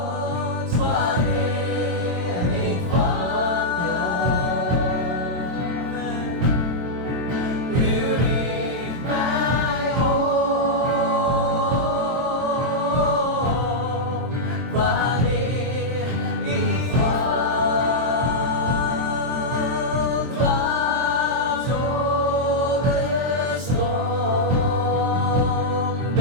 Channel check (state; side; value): late; left; 23 ms